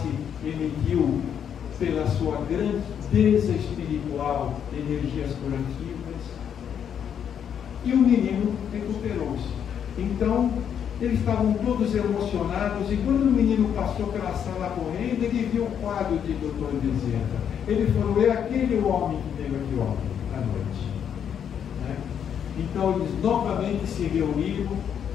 emitiu pela sua grandeza espiritual energias curativas, e o menino recuperou-se. Então, eles estavam todos emocionados, e quando o menino passou pela sala correndo, ele viu o quadro de Dr. Bezerra. Ele falou, é aquele homem que veio aqui ontem à noite. Né? Então, eles novamente se reuniram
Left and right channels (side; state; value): right; quieter; 8.4 dB